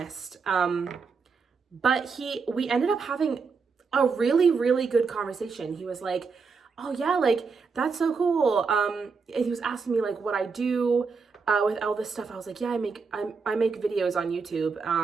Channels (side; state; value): left; quieter; 5.1 dB